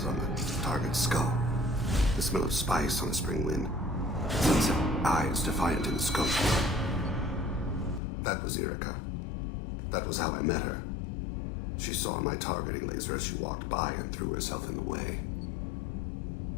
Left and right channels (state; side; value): drops out; right; at 8.0 s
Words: on the target's skull. The smell of spice on a spring wind. Sunset eyes defiant in the scope. That was Erica. That was how I met her. She saw my targeting laser as she walked by and threw herself in the way.